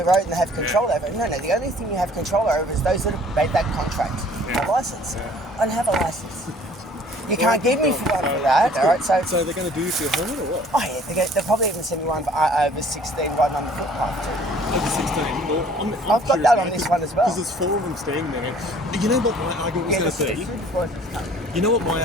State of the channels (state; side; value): normal; both; correlation 0.54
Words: road and they have control over it. No, the only thing you have control over is those that have made that contract. A license. I don't have a license. You can't give me for one for that, all right? So they're going to do you for your helmet or what? Oh yeah, they'll probably even send me one for over 16 riding on the footpath too. Over 16? Well, I'm I've got that on this one as well. Because there's 4 of them standing there. You know what my argument was going to be? You know what my